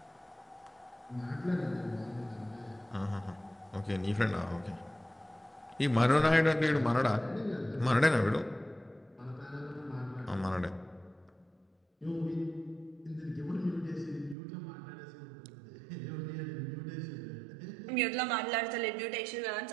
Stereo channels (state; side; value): drops out; left; at 14.4 s